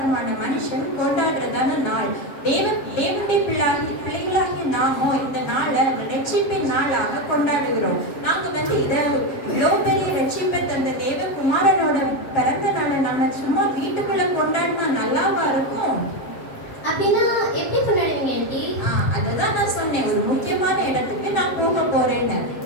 மனுஷன் கொண்டாடுறதான நாள். தேவனுடைய பிள்ளைகளாகிய நாமோ இந்த நாளை ரட்சிப்பின் நாளாக கொண்டாடுகிறோம். நாங்க இதை இவ்வளோ பெரிய ரட்சிப்பை தந்த தேவகுமாரனோட பிறந்த நாளை நம்ம சும்மா வீட்டுக்குள்ள கொண்டாடினா நல்லாவா இருக்கும்? அப்படின்னா எப்படி கொண்டாடுவீங்க ஆண்டி? அததான் நான் சொன்னேன், ஒரு முக்கியமான இடத்துக்கு நான் போக போறேன்னு.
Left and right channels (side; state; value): right; late; 7.3 ms